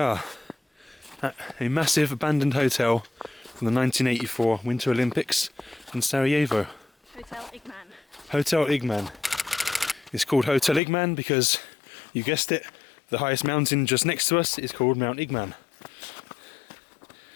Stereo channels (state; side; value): drops out; right; at 10.8 s